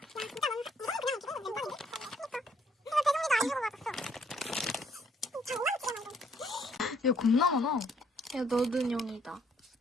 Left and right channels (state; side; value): normal; both; correlation 0.67